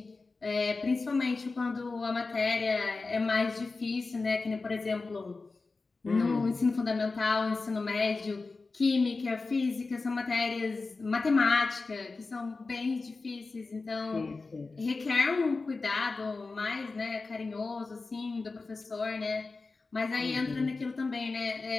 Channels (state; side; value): quieter; right; 3.8 dB